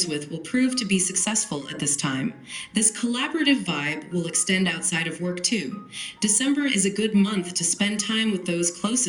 with will prove to be successful at this time. This collaborative vibe will extend outside of work too. December is a good month to spend time with those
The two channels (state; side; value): identical; both; correlation 1.00